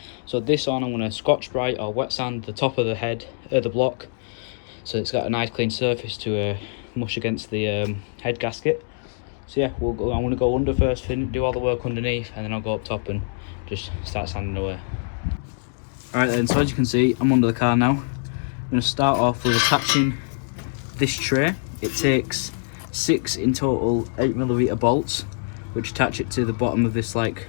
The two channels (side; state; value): right; silent; digital silence